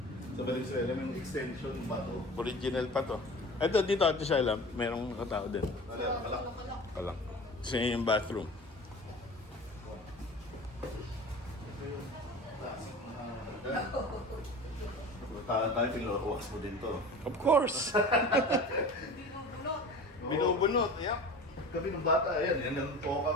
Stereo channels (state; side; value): normal; both; correlation 0.37